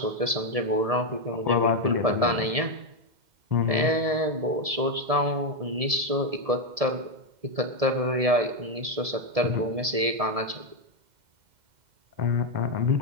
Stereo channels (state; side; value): late; left; 1.7 ms